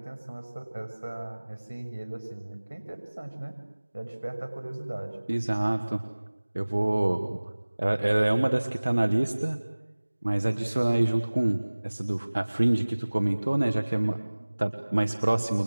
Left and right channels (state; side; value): inverted; both; correlation -1.00